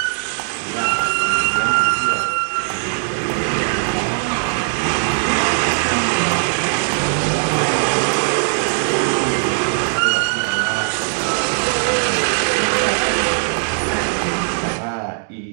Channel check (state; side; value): silent; left; digital silence